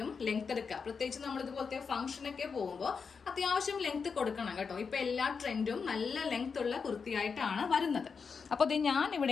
ലെങ്ത് എടുക്കുക. പ്രത്യേകിച്ച് നമ്മൾ ഇതുപോലത്തെ ഫംഗ്ഷനൊക്കെ പോകുമ്പോൾ അത്യാവശ്യം ലെങ്ത് കൊടുക്കണം കേട്ടോ. ഇപ്പൊ എല്ലാ ട്രെൻഡും നല്ല ലെങ്ത് ഉള്ള കുർത്തിയായിട്ടാണ് വരുന്നത്. അപ്പൊ ഞാൻ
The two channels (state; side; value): quieter; right; 5.6 dB